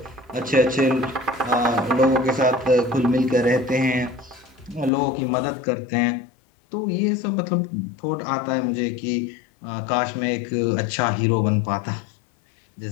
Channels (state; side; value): drops out; right; at 4.9 s